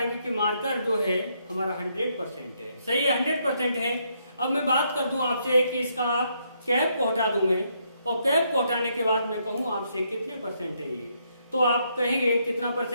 कि मार्कर जो है हमारा 100% है। सही है, 100% है। अब मैं बात कर दूं आपसे कि इसका कैप को हटा दूं मैं, और कैप को हटाने के बाद मैं कहूं आपसे कितने परसेंट है ये, तो आप कहेंगे कितना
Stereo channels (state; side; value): inverted; both; correlation -0.75